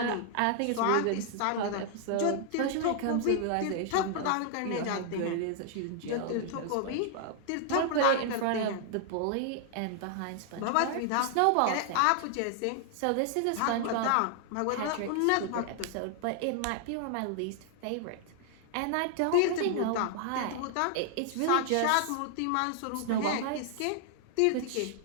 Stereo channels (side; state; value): both; different; correlation 0.00